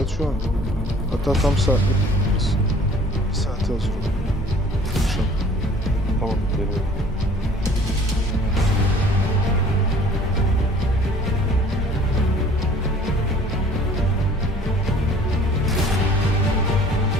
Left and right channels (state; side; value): normal; both; correlation 0.52